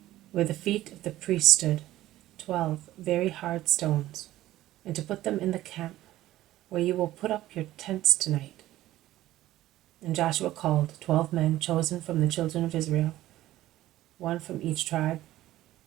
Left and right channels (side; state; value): left; quieter; 15.0 dB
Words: where the feet of the priests stood, 12 very hard stones, and to put them in the camp where you will put up your tents tonight.' And Joshua called 12 men chosen from the children of Israel, 1 from each tribe,